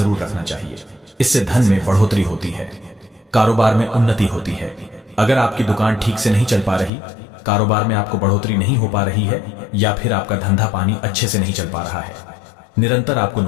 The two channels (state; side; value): drops out; right; at 6.9 s